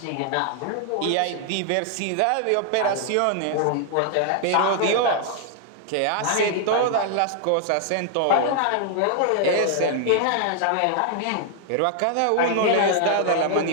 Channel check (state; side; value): different; both; correlation 0.00